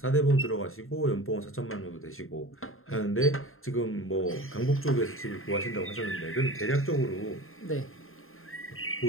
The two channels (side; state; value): right; late; 0.61 ms